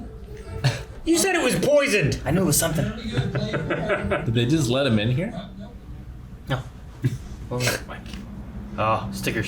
You said it was poisoned. I knew it was something. Did they just let him in here? No. What was it? Oh,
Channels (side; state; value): both; identical; correlation 1.00